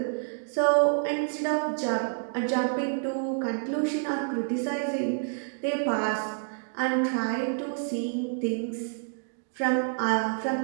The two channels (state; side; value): silent; left; digital silence